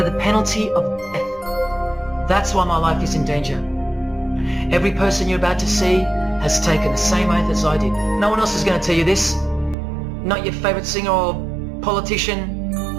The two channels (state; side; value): drops out; left; at 9.8 s